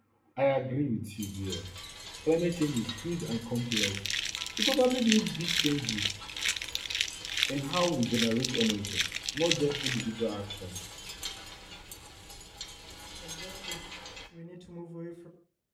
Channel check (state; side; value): identical; both; correlation 1.00